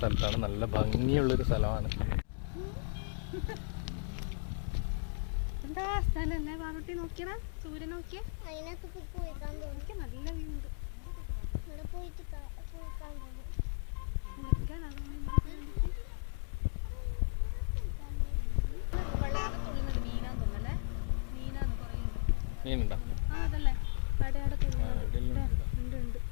സ്ഥലത്താണ്. നല്ല ഭംഗിയുള്ളൊരു സ്ഥലമാണ്. എന്താ സ്ഥലല്ലേ പാറുട്ടി, നോക്കിയടാ സൂര്യൻ നോക്കിയേ. നല്ല വ്യൂ ഉണ്ട്. മീനുണ്ടോ?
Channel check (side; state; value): right; silent; 54 dB below the other